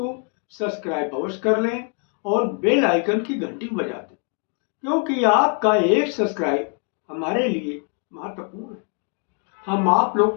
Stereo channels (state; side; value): quieter; right; 38.4 dB